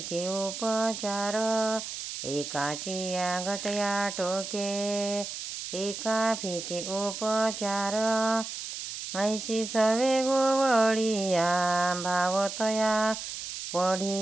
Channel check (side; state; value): right; noise; hiss, 7 dB below the sound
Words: उपचार, एकाची या घटया टोके एका फिके उपचार, ऐशी सवे गोवळिया भावतया